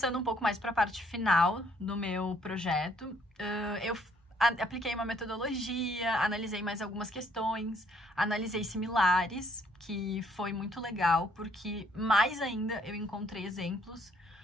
um pouco mais para a parte final do meu projeto, eu apliquei uma metodologia, analisei mais algumas questões, analisei similares, que foi muito legal, porque mais ainda eu encontrei exemplos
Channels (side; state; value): both; normal; correlation 0.66